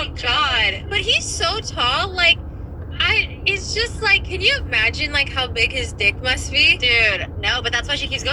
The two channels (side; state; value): both; identical; correlation 1.00